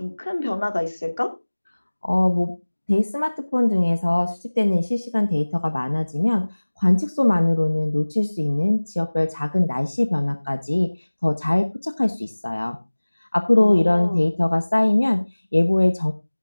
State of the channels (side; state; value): both; inverted; correlation -1.00